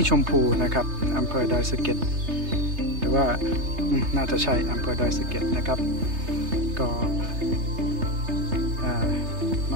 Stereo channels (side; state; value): left; late; 3.3 ms